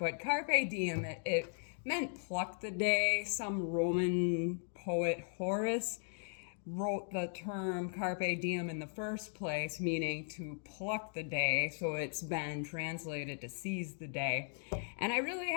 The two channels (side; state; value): right; silent; 53 dB below the other